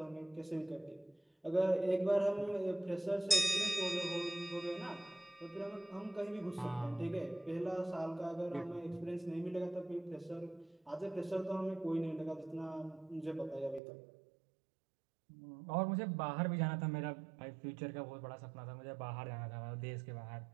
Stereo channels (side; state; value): left; drops out; at 13.8 s